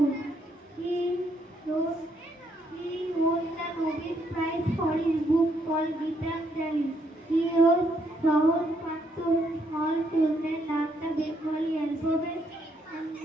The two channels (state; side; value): normal; both; correlation 0.74